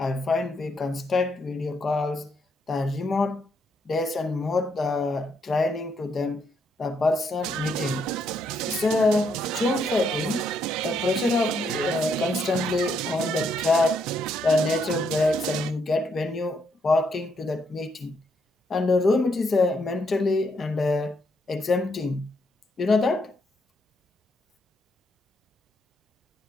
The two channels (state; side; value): normal; both; correlation 0.76